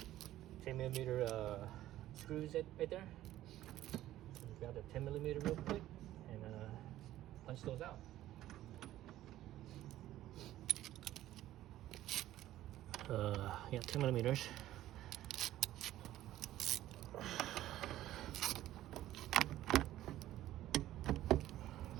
screws right there. So grab the 10 millimeter real quick and punch those out. Yeah, 10 millimeters.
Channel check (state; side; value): quieter; left; 14.0 dB